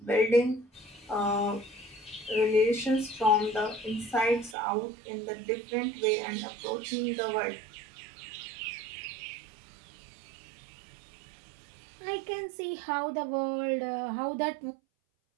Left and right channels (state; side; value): drops out; left; at 4.5 s